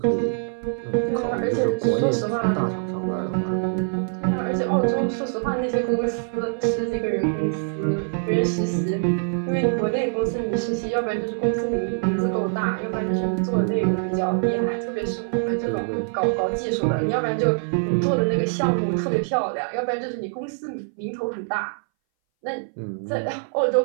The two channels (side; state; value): left; silent; 61 dB below the other